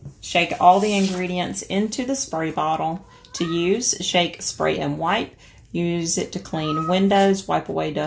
shake all the ingredients into the spray bottle. To use, shake, spray, and wipe. Use it to clean windows, wipe away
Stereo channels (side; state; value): both; identical; correlation 1.00